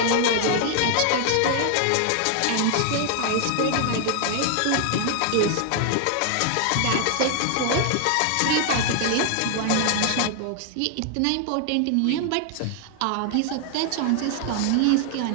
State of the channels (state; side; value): different; both; correlation 0.00